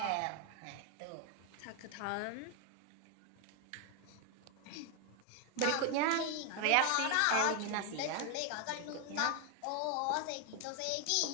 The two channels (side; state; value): both; different; correlation 0.01